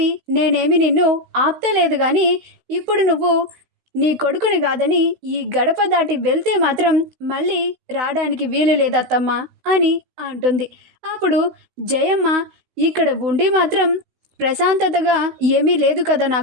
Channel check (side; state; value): left; late; 16 ms